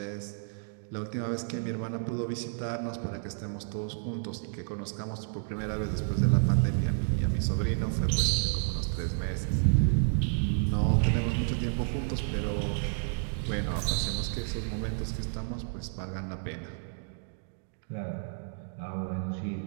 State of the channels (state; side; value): silent; left; digital silence